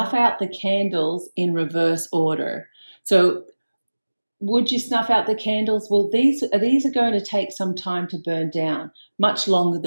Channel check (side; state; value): both; inverted; correlation -1.00